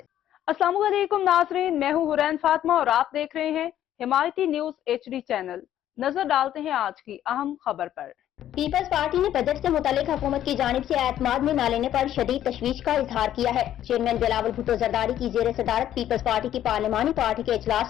السلام علیکم ناظرین، میں ہوں حورین فاطمہ اور آپ دیکھ رہے ہیں حمایتی نیوز HD چینل۔ نظر ڈالتے ہیں آج کی اہم خبر پر۔ پیپلز پارٹی نے بجٹ سے متعلق حکومت کی جانب سے اعتماد میں نہ لینے پر شدید تشویش کا اظہار کیا ہے۔ چیئرمین بلاول بھٹو زرداری کی زیر صدارت پیپلز پارٹی کی پارلیمانی پارٹی کے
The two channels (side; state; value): right; quieter; 11.6 dB